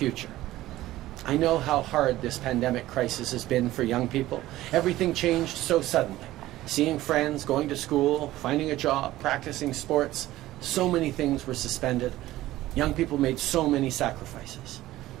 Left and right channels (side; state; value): left; quieter; 15.9 dB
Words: I know how hard this pandemic crisis has been for young people. Everything changed so suddenly. Seeing friends, going to school, finding a job, practicing sports, so many things were suspended. Young people made so many sacrifices.